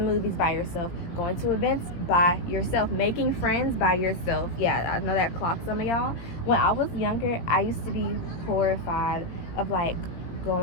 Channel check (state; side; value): late; right; 18 ms